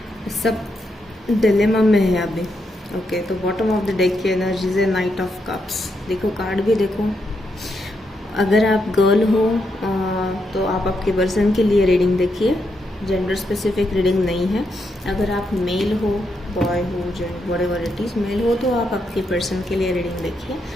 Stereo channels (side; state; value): both; normal; correlation 0.81